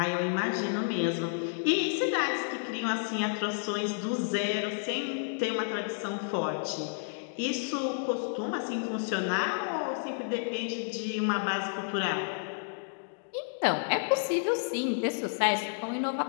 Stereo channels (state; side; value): silent; right; digital silence